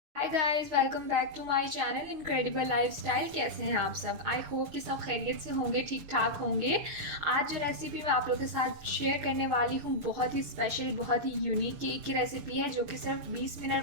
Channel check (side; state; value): left; late; 6.9 ms